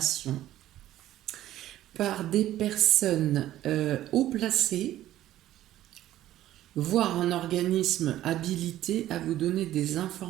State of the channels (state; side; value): quieter; left; 13.6 dB